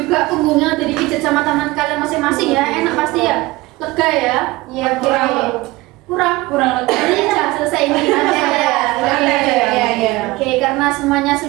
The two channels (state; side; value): quieter; left; 20.7 dB